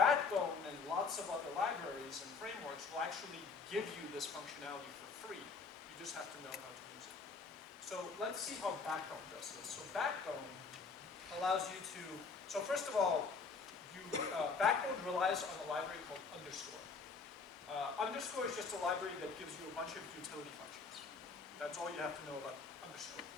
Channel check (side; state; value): right; quieter; 4.9 dB